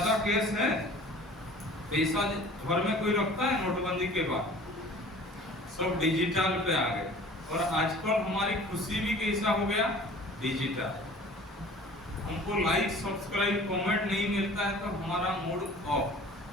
केस है, पैसा घर में कोई रखता है? नोटबंदी के बाद सब डिजिटल पे आ गए और आजकल हमारी खुशी भी कैसा हो गया? डिजिटल। हमको लाइक सब्सक्राइब कमेंट नहीं मिलता है तो हमारा मूड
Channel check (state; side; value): normal; both; correlation 0.46